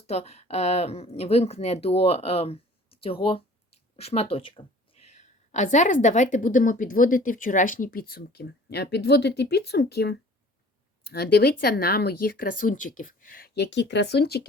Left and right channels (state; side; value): normal; both; correlation 0.49